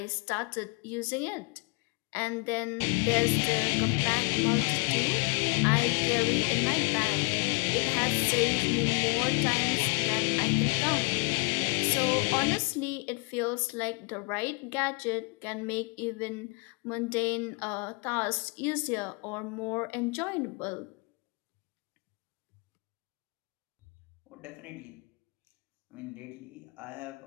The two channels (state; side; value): quieter; right; 31.1 dB